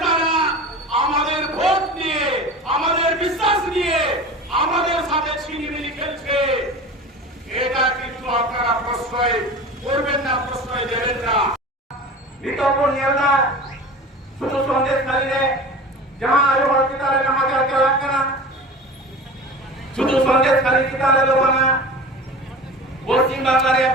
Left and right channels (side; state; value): both; normal; correlation 0.35